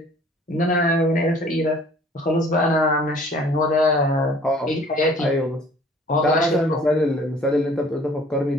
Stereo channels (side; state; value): both; normal; correlation 0.53